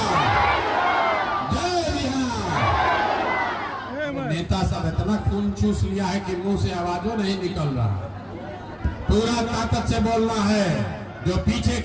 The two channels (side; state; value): both; identical; correlation 1.00